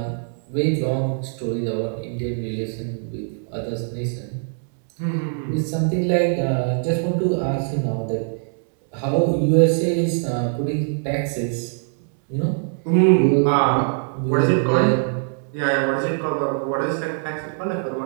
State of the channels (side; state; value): left; silent; 64 dB below the other